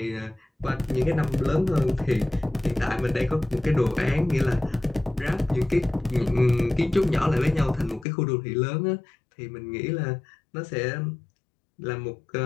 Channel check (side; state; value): right; drops out; at 8.1 s